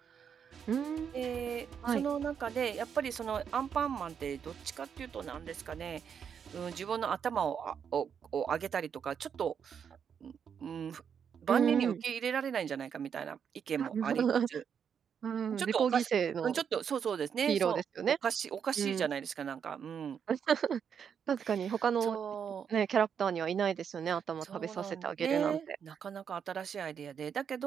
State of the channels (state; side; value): quieter; left; 7.4 dB